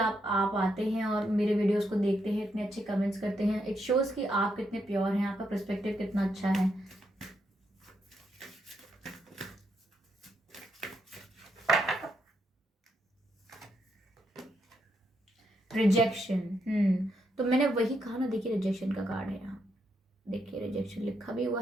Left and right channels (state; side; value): normal; both; correlation 0.79